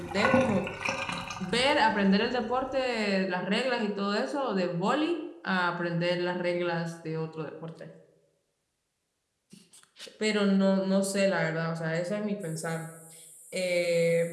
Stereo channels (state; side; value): identical; both; correlation 1.00